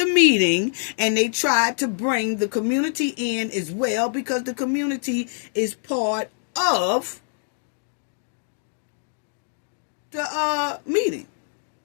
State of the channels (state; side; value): silent; right; digital silence